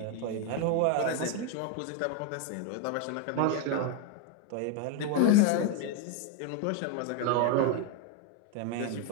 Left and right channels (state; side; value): different; both; correlation 0.01